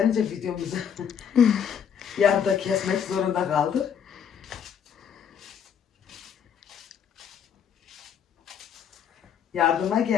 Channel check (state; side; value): quieter; right; 7.9 dB